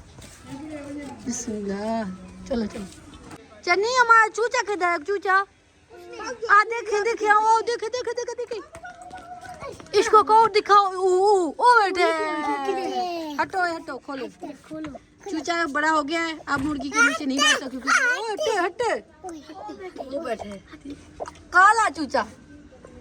बिस्मिल्लाह, चलो चलो। चन्नी हमारा चूचा किधर है? चूचा आ देखे देखे, ओ देखे देखे देखे देखे, इसको को दिखाओ। ओ बैठे, हटो हटो, खोलो खोलो। चूचा बड़ा हो गया है, अब मुर्गी के नीचे नहीं बैठता क्योंकि ओ हटे हटे, वो बैठे काला चूचा।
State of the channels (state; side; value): identical; both; correlation 1.00